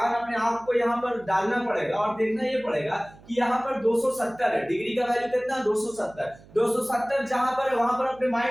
अपने आप को यहाँ पर डालना पड़ेगा और देखना ये पड़ेगा कि यहाँ पर 270 है, डिग्री का वैल्यू कितना 270 जहां पर है वहां पर अपने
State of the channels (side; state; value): right; noise; hum, 23 dB below the sound